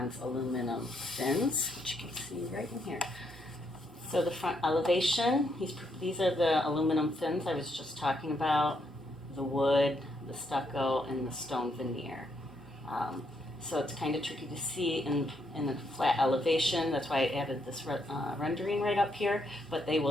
aluminum fins, which you can see right in here. So the front elevation, these are the aluminum fins I was just talking about, the wood, the stucco, and the stone veneer. So it's kind of tricky to see in a flat elevation. That's why I added this rendering right up here. But they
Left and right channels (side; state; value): both; normal; correlation 0.76